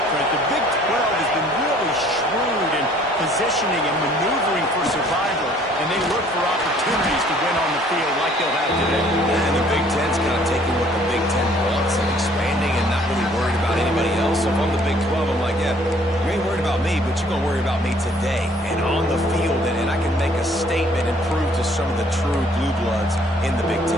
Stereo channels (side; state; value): both; normal; correlation 0.59